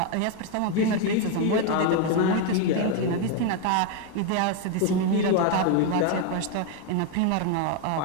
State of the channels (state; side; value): different; both; correlation 0.01